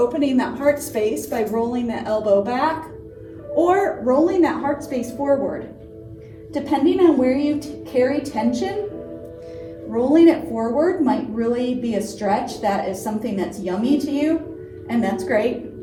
that heart space by rolling that elbow back or rolling that heart space forward. Depending on where you carry tension, rolling it forward might really be a stretch. That is something that's yummy to you, and that's great.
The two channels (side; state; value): both; identical; correlation 1.00